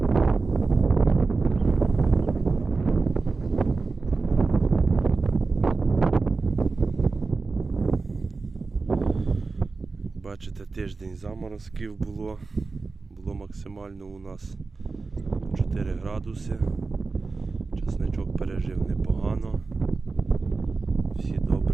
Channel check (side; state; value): left; quieter; 4.0 dB